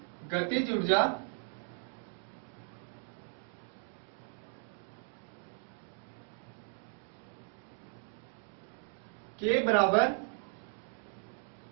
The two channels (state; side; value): silent; left; 53 dB below the other